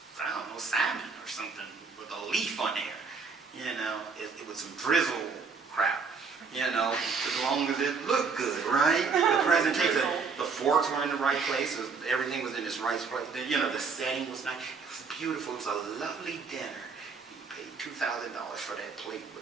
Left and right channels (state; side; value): quieter; left; 5.0 dB